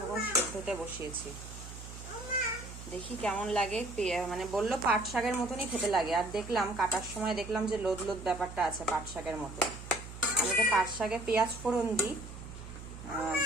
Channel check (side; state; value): right; noise; hum, 12 dB below the sound